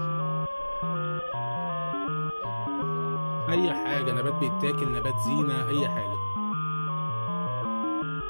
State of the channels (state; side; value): inverted; both; correlation -1.00